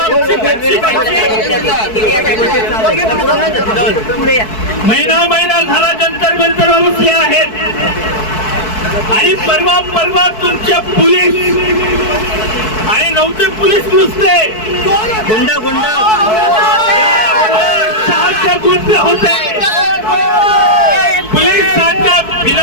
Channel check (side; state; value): right; late; 4.6 ms